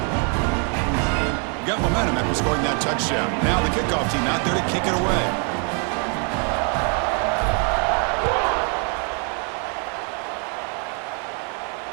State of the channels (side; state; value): left; quieter; 39.1 dB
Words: Got momentum after scoring that touchdown. Now the kickoff team out there to kick it away.